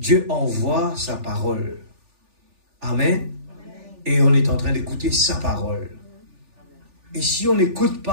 envoie sa parole. Amen. Et on est en train d'écouter sa parole. Et si on n'écoute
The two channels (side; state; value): left; late; 3.4 ms